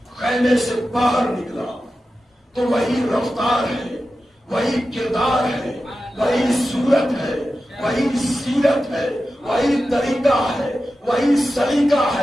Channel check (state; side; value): normal; both; correlation 0.92